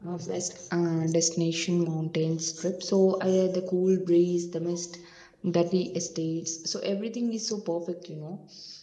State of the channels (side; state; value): both; identical; correlation 1.00